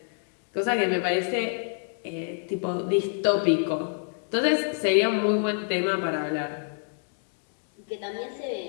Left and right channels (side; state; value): right; silent; 60 dB below the other